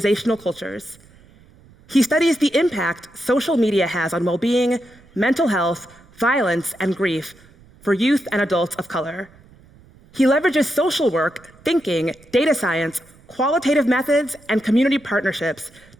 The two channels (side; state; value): right; noise; rumble, 27 dB below the sound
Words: cultures. He studies the impact social media has on well-being, mental health, violence, and grief for youth and adults of color. He leverages social work, thinking, data science, qualitative methods, and community partnerships